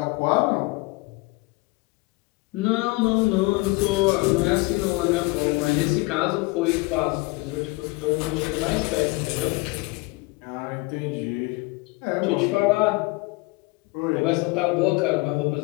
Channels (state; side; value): quieter; right; 24.6 dB